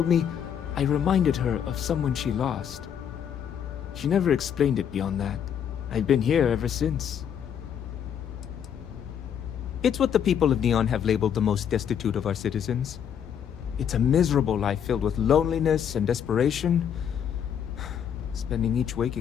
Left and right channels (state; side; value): quieter; right; 8.5 dB